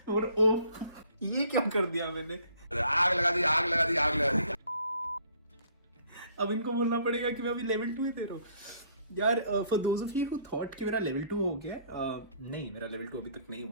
और ओह ये क्या कर दिया मैंने, आग लगा दी, आग लगा दी, आग लगा दी। अब इनको बोलना पड़ेगा कि मैं अभी लेवल 2 ही दे रहा हूँ यार। For those of you who thought कि मेरा लेवल 2 हो गया, नहीं मेरा लेवल 2 अभी तक नहीं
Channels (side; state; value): both; inverted; correlation -0.61